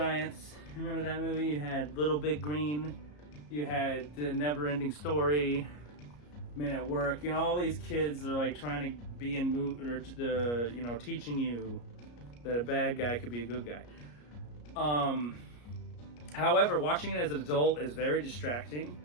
remember that movie? You had Little Big Green, you had The Never Ending Story, Men at Work, you know, all these kids are like trying to be in you know, teaching you that a bad guy could be a good guy. However, watching it as an adult is very distracting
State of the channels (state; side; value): late; right; 34 ms